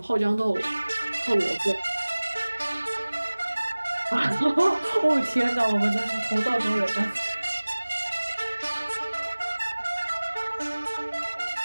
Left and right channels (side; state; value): both; inverted; correlation -1.00